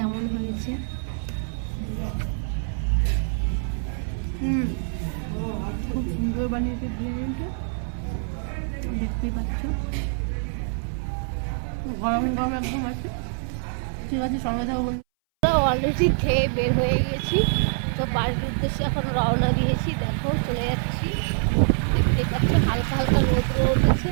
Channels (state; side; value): silent; left; 61 dB below the other